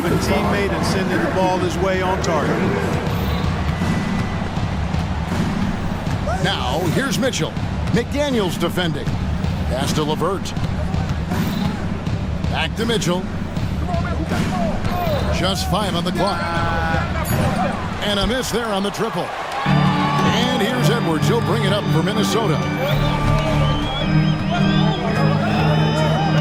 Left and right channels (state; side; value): identical; both; correlation 1.00